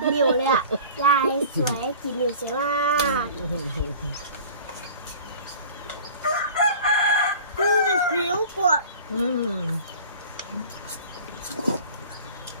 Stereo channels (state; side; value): inverted; both; correlation -0.43